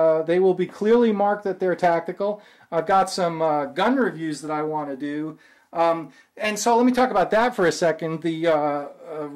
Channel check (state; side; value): identical; both; correlation 1.00